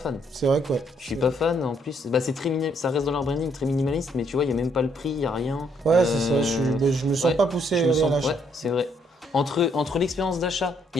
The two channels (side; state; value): both; normal; correlation 0.70